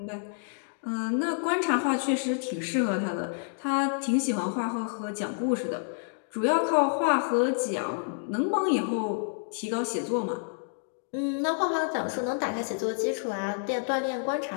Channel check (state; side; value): silent; right; digital silence